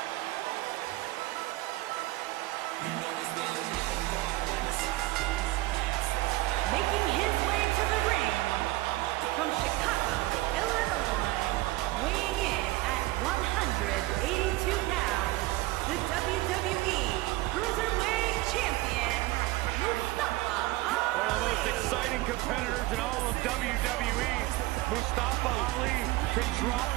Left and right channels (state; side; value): quieter; left; 18.8 dB